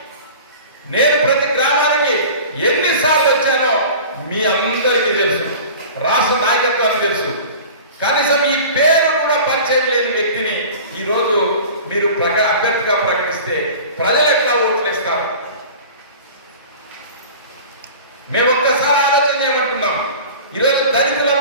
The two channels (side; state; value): both; inverted; correlation -0.39